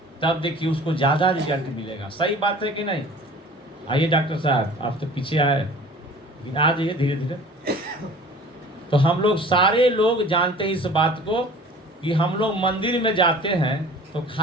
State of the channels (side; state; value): both; normal; correlation 0.45